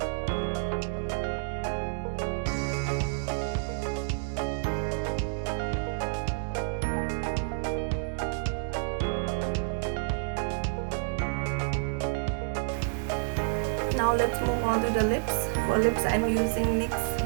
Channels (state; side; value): silent; left; 58 dB below the other